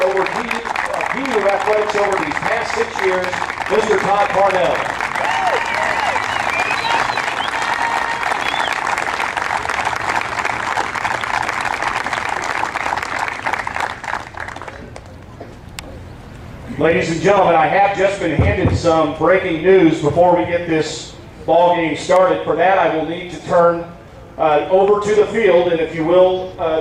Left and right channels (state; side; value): identical; both; correlation 1.00